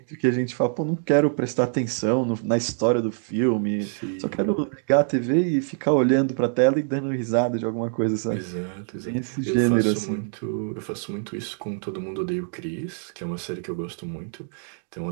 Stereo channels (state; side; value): silent; left; 62 dB below the other